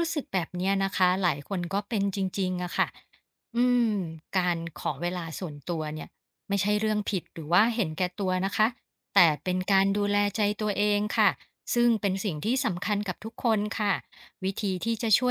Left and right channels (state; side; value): identical; both; correlation 1.00